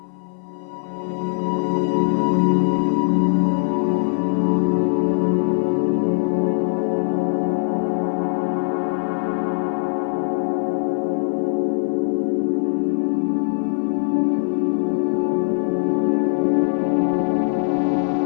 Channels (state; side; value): silent; right; 56 dB below the other